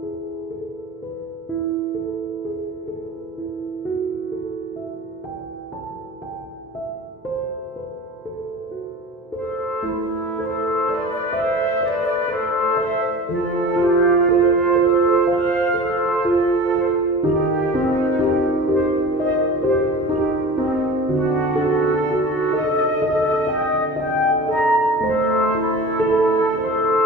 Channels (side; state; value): both; normal; correlation 0.38